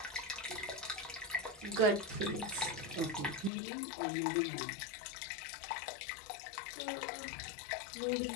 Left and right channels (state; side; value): drops out; right; at 3.5 s